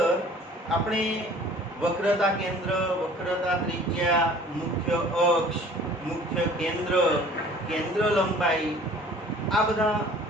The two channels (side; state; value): both; normal; correlation 0.49